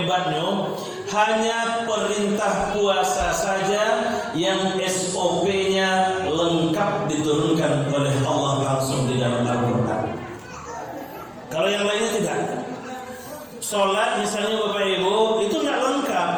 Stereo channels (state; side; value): identical; both; correlation 1.00